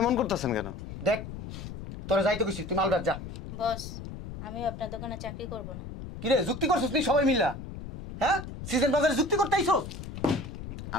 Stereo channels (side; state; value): left; noise; rumble, 10 dB below the sound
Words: করতেছেন কেন? দেখ তোরা যাইতে গেছিস, তুই মাল বেচ যা। বস আমি আপনার দোকানে চাকরি করব না। কিরে যুক্তি করছিস তুই সবাই মিল্লা? হ্যাঁ সিজন বাজারে যুক্তি করতে আইছস?